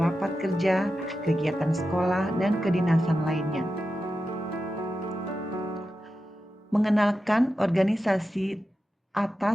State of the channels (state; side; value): normal; both; correlation 0.91